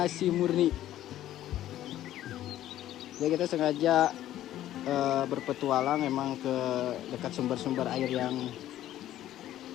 murni. Jadi kita sengaja berpetualang emang ke dekat sumber-sumber air yang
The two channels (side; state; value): right; quieter; 13.0 dB